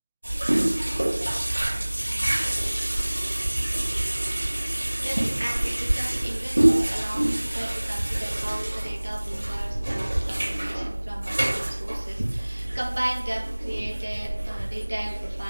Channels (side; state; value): both; inverted; correlation -1.00